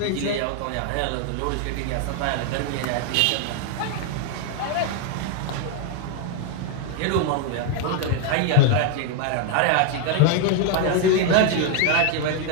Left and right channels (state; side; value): different; both; correlation 0.01